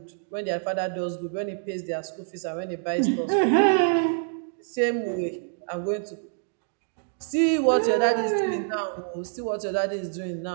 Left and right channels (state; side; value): silent; left; digital silence